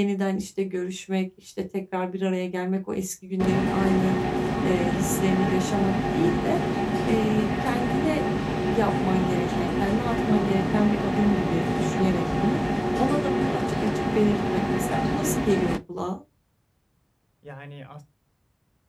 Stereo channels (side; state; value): both; identical; correlation 1.00